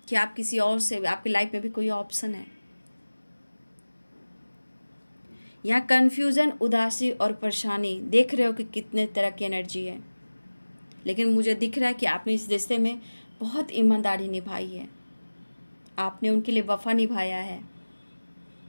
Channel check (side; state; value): both; inverted; correlation -1.00